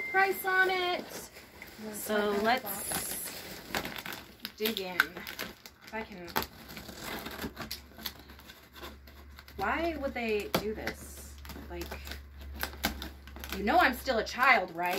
price on it. So let's dig in. If I can... Why would they do this? Like, you know I'm still a child,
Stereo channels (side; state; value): both; identical; correlation 1.00